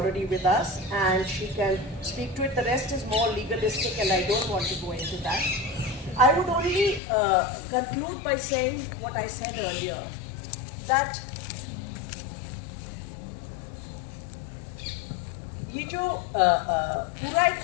with us and she can speak to it. The rest is more legalistic and I don't want to go into that. I would only conclude by saying what I said earlier, that ये जो पूरा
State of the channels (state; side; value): drops out; right; at 7.0 s